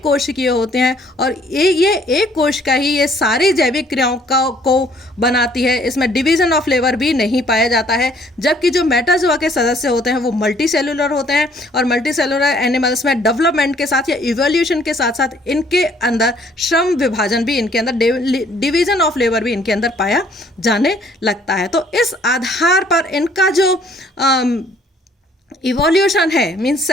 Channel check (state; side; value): normal; both; correlation 0.61